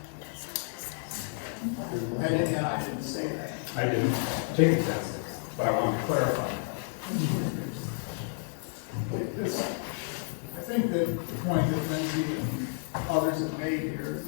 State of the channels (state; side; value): silent; right; digital silence